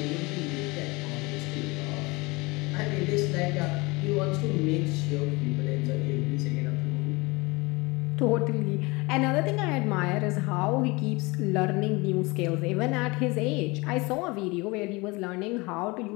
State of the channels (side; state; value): right; quieter; 24.8 dB